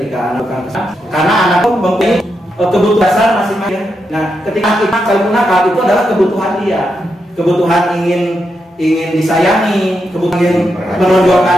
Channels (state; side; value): normal; both; correlation 0.84